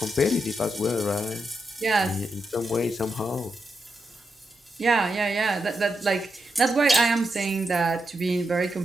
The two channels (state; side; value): normal; both; correlation 0.85